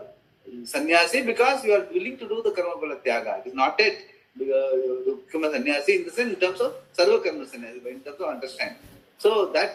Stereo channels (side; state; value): both; identical; correlation 1.00